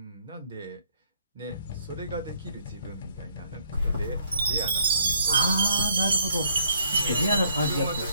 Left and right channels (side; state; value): both; inverted; correlation -0.65